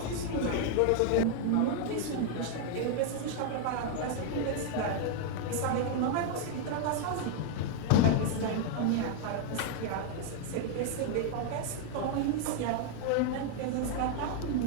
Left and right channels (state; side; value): different; both; correlation 0.00